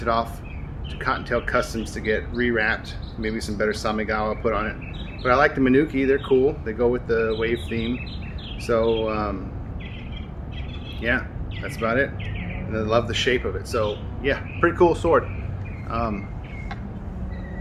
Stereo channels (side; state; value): both; identical; correlation 1.00